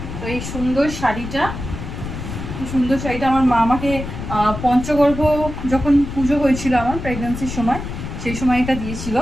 তো এই সুন্দর শাড়িটা আমার মা আমাকে পঞ্চগর্ভ যখন পুজো হয়েছিল আমার প্রেগন্যান্সির সময়, সেই সময় এটা দিয়েছিল।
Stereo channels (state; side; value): noise; left; rumble, 8 dB below the sound